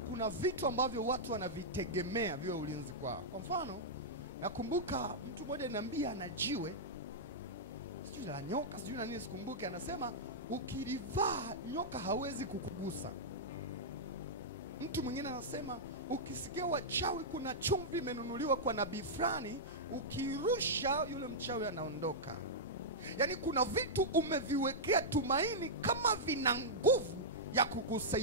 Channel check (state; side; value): normal; both; correlation -0.10